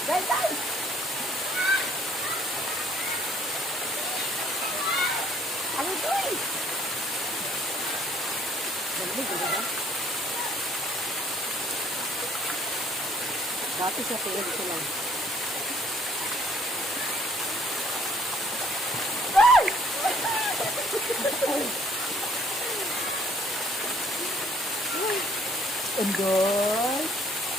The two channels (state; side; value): normal; both; correlation 0.61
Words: Guys, guys! Ano ito eh? Dalamig, ano ba? Dati sa tiyan ko lang. Enjoy!